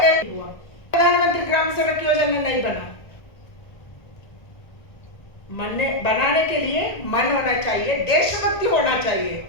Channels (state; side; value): late; right; 1.9 ms